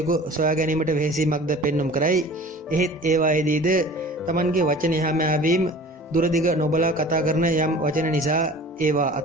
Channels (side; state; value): both; normal; correlation 0.43